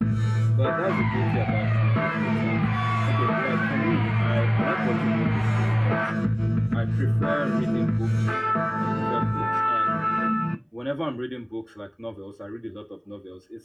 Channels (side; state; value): both; identical; correlation 1.00